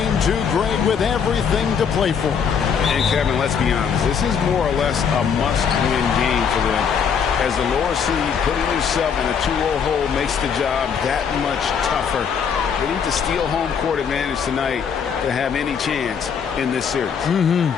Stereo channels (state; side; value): quieter; right; 6.9 dB